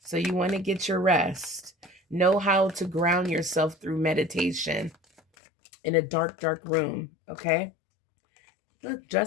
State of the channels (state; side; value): drops out; right; at 5.2 s